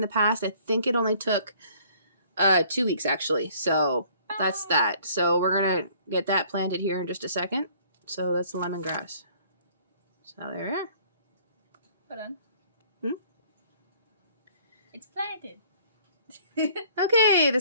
the past, I think it only took 2 weeks actually. So that's that. So we're going to get that planted here in just a second. So that's the lemongrass. So there we are. Hold on. It's planted. Okay, the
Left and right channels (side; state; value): both; inverted; correlation -0.57